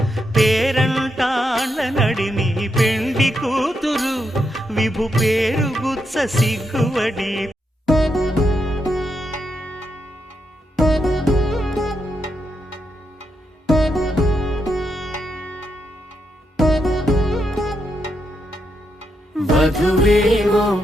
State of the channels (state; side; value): normal; both; correlation 0.82